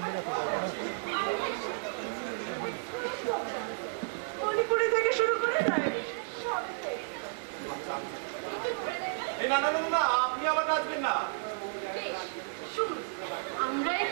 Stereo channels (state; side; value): silent; left; digital silence